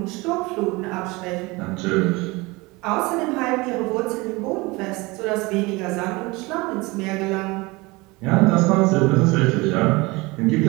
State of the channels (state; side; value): quieter; left; 23.7 dB